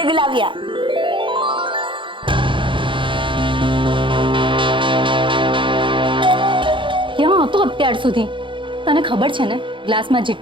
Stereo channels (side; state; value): left; late; 0.24 ms